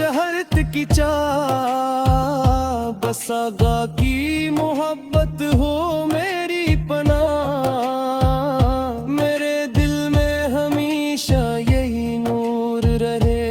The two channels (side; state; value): both; identical; correlation 1.00